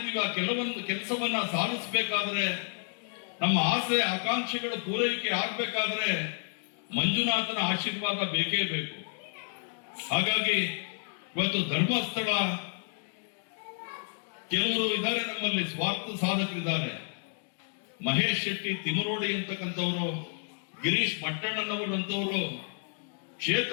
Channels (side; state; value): right; silent; 57 dB below the other